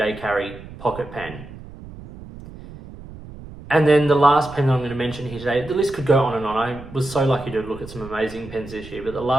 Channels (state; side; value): noise; right; rumble, 16 dB below the sound